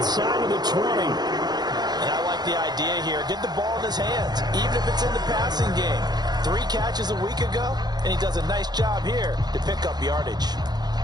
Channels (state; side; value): late; left; 0.20 ms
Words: of the 20. And I like the idea here. Get the ball in his hands, even if it's in the passing game. 3 catches a week ago, and he does a nice job here to pick up yardage.